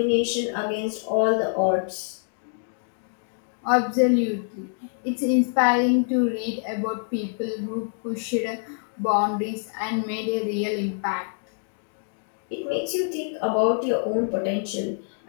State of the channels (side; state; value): right; silent; digital silence